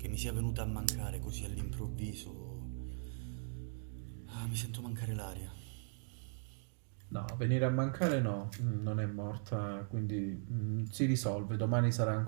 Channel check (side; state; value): left; silent; digital silence